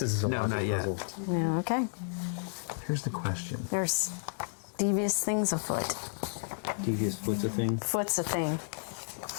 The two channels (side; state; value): right; silent; digital silence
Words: it's a No, logic not yet. puzzle. Yeah, okay. Here's the question. There's devious things afoot. Devious foot's a thing. Foot's a thing.